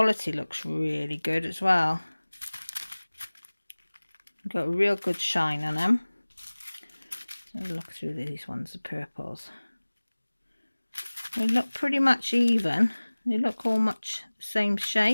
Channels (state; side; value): inverted; both; correlation -1.00